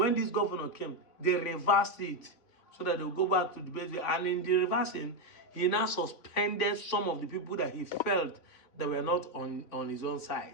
this governor came, they reversed it so that they will go back to the base. And in the reversing, he now suspended some of the people that he felt that were not on his own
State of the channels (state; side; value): late; right; 3.5 ms